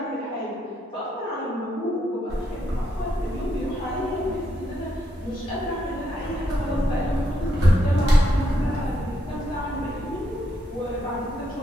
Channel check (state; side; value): normal; both; correlation 0.78